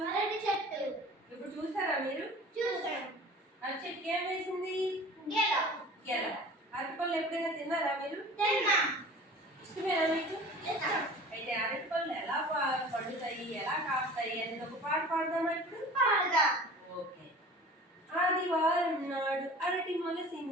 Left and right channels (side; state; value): both; normal; correlation 0.41